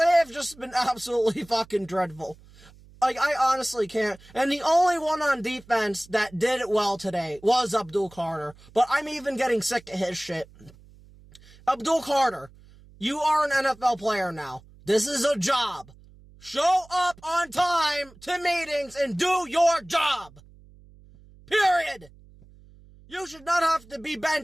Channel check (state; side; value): noise; right; hum, 24 dB below the sound